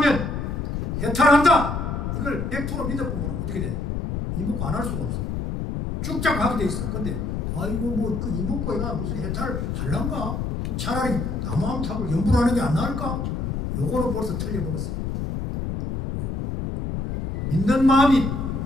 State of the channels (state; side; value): noise; left; rumble, 3 dB below the sound